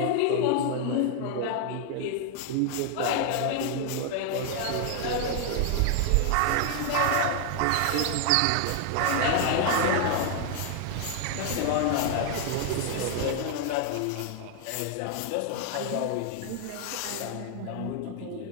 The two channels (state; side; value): different; both; correlation 0.00